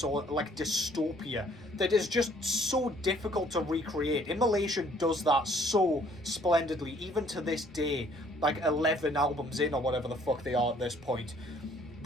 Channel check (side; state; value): right; noise; rumble, 29 dB below the sound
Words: or like dystopia that is just so difficult to recreate. Immolation does that so splendidly, even to this day, like 11 albums in or whatever the fuck they are at this point.